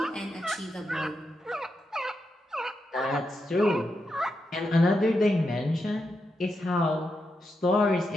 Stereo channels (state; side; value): normal; both; correlation 0.85